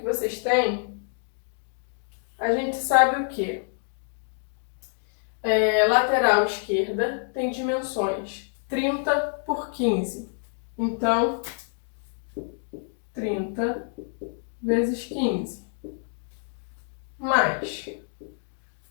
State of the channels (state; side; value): silent; right; digital silence